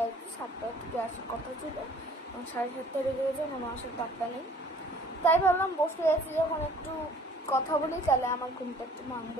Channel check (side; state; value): both; normal; correlation 0.54